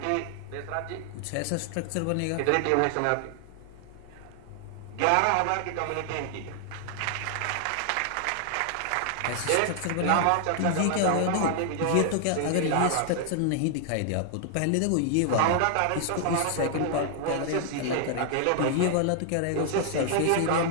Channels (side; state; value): both; different; correlation 0.00